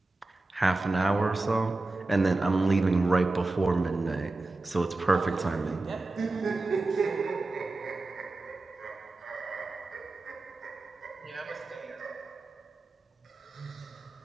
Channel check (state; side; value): quieter; left; 3.1 dB